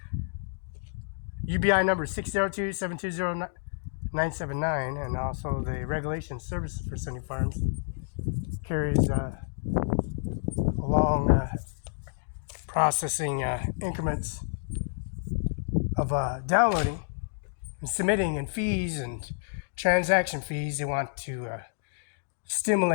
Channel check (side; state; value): right; silent; digital silence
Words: UBI number 602-720-979, and also the regulation services for Sunny Farms carries long processing increments of downloading and submitting, and fees and transaction fees. They want to